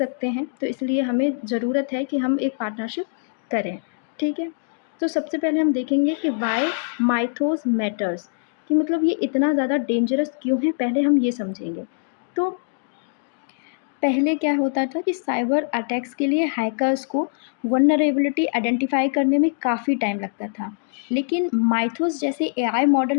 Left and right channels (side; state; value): right; silent; digital silence